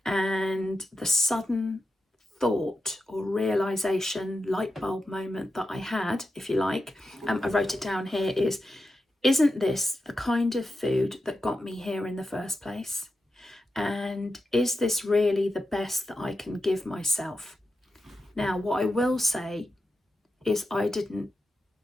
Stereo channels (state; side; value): normal; both; correlation 0.90